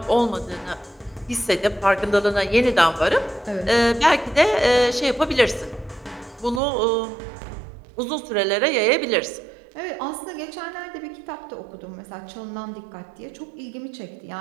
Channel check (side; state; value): left; drops out; at 6.6 s